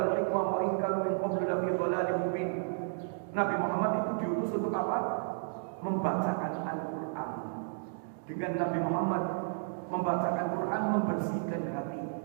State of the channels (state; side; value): silent; left; digital silence